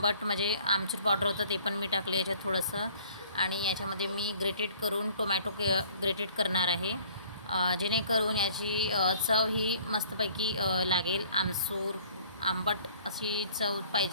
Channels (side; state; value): both; inverted; correlation -0.54